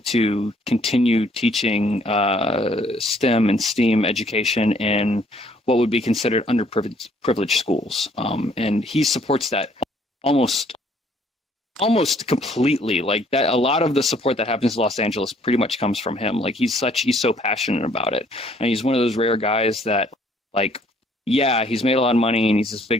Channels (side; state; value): both; normal; correlation 0.63